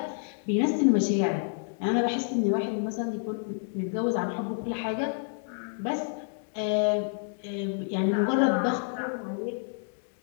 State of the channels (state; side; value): silent; right; 59 dB below the other